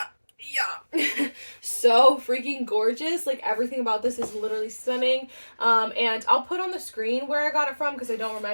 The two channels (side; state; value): both; inverted; correlation -1.00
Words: Yeah. So freaking gorgeous. Like everything about this is literally stunning. And I'll put on the screen where I got it from because I don't